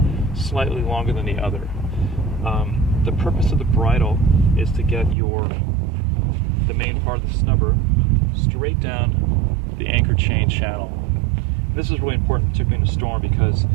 slightly longer than the other. The purpose of the bridle is to get the main part of the snubber straight down the anchor chain channel. This is really important, particularly in a storm, because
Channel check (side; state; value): left; drops out; at 5.2 s